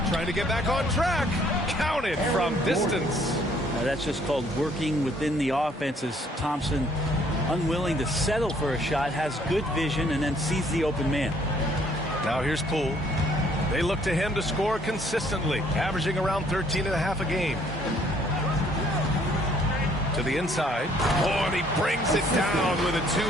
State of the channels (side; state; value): both; normal; correlation 0.63